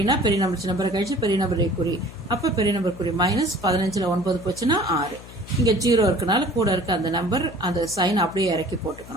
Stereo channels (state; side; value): noise; left; hum, 17 dB below the sound